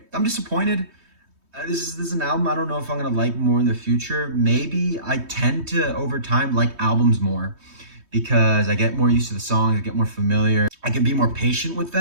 I'm disappointed. This is an album I don't know if I'm going to like more in the future. Maybe I tend to, over time, like albums more because I get more used to the songs, I get more familiar. I can be more patient with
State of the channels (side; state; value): left; late; 3.2 ms